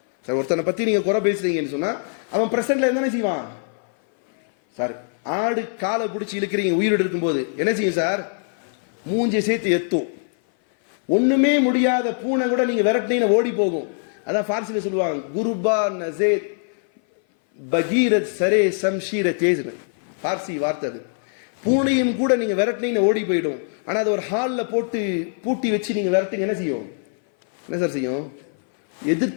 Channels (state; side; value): silent; right; 58 dB below the other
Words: சார் ஒருத்தனை பத்தி நீங்க குறை பேசுறீங்கன்னு சொன்னா அவன் பிரசன்ட்ல என்ன செய்வான்? சார் ஆடு காலை பிடிச்சி இழுக்கிறீங்க உயிரோடு இருக்கும்போது என்ன செய்யும் சார்? மூஞ்சி சேர்த்து எத்தும். ஒண்ணுமே முடியாத பூனை கூட நீங்க விரட்டினீங்க ஓடி போகும். அதான் பார்சில சொல்லுவாங்க, குருபா நசேத் பகீரத் சரே சம்ஷீர தேஜ்னு பார்சி வார்த்தை அது. பூனையும் கூட நீங்க விரட்டினீங்க ஓடி போயிடும். ஆனா அது ஒரு ஹால்ல போட்டு பூட்டி வச்சு நீங்க விரட்டுங்க என்ன செய்யும்? என்ன சார் செய்யும்?